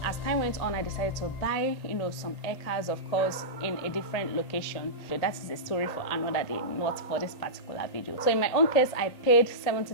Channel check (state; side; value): late; right; 1.8 ms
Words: as time went on, I decided to buy, some acres, of course, in a different location. So that is a story for another day, not for this particular video. So in my own case, I paid